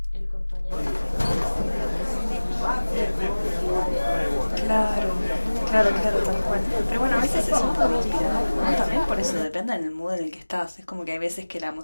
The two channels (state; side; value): inverted; both; correlation -1.00